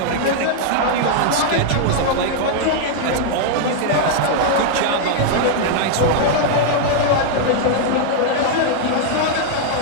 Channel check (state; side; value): different; both; correlation -0.01